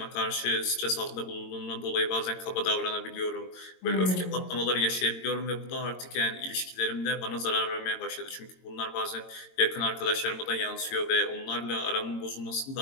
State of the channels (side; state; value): right; late; 22 ms